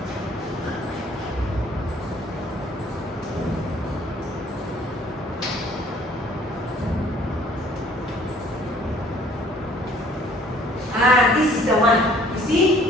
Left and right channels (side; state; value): both; normal; correlation 0.57